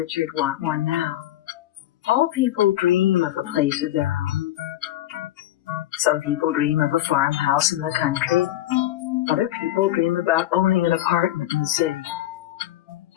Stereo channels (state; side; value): quieter; right; 13.8 dB